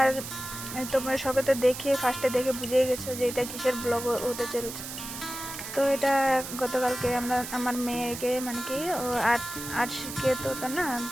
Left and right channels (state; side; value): noise; right; hiss, 9 dB below the sound